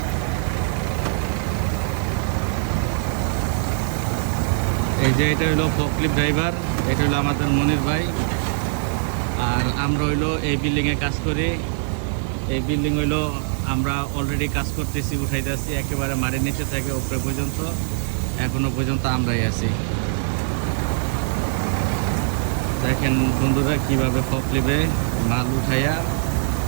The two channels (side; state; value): left; silent; 64 dB below the other